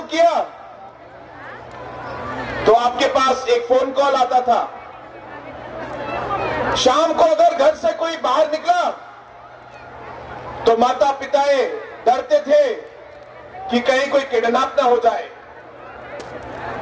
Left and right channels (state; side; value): identical; both; correlation 1.00